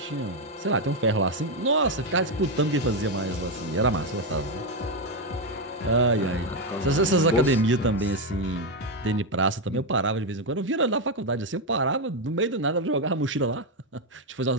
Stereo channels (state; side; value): normal; both; correlation 0.05